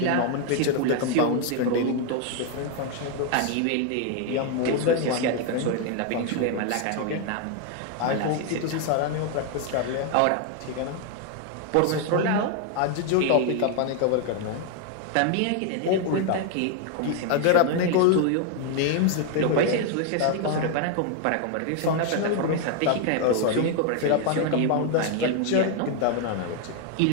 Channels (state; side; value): different; both; correlation 0.00